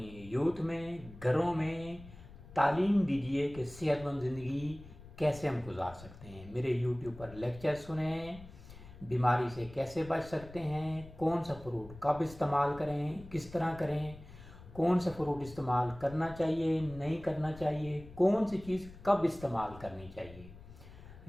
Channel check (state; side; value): noise; left; rumble, 17 dB below the sound